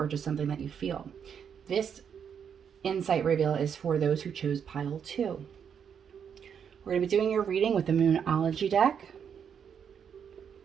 just something that you feel. This insight reveal is for those who chose pile 2. We're going to be doing your reading with the Moonology deck,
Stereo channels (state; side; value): quieter; left; 7.6 dB